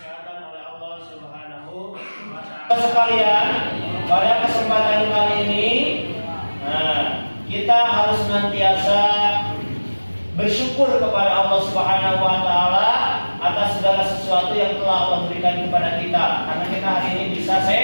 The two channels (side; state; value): both; inverted; correlation -1.00